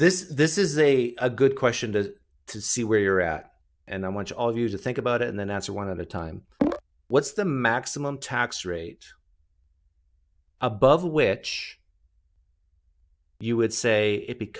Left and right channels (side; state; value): both; identical; correlation 1.00